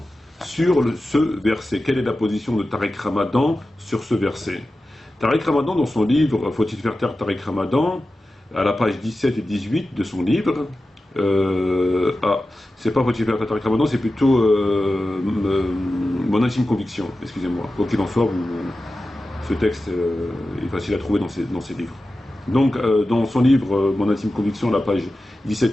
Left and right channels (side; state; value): both; normal; correlation 0.93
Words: sur ce verset. Quelle est la position de Tariq Ramadan sur ce verset? Tariq Ramadan, dans son livre Faut-il faire taire Tariq Ramadan, à la page 17 et 18 de son livre, c'est pas Faut-il faire taire Tariq Ramadan, c'est plutôt Mon intime conviction, excusez-moi. Quoi qu'il en soit, ce texte est facile à trouver dans ses livres. Donc, dans son livre Mon intime conviction, à la page